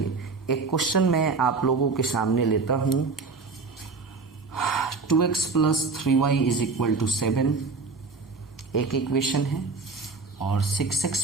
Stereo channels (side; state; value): left; quieter; 4.3 dB